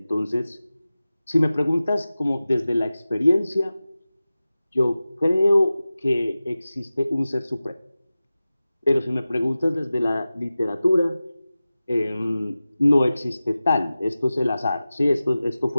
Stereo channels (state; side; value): inverted; both; correlation -0.96